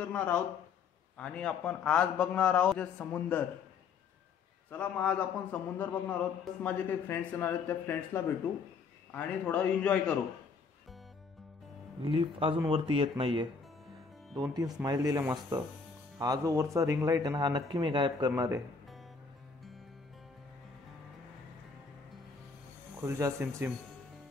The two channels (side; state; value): right; quieter; 5.2 dB